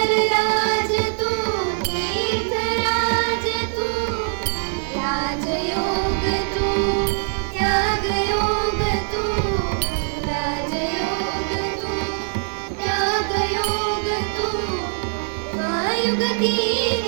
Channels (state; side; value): silent; left; digital silence